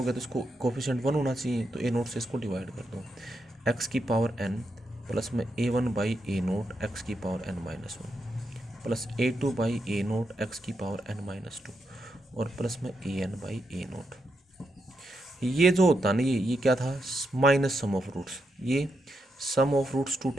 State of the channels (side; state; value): both; normal; correlation 0.83